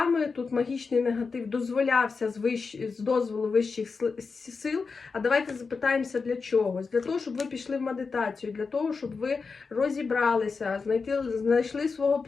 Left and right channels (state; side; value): quieter; right; 4.8 dB